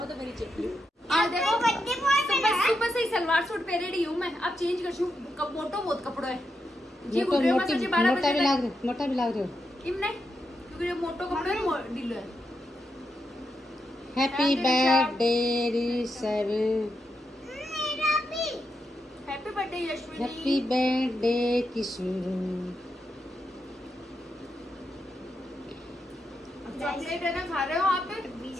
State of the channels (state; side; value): normal; both; correlation 0.84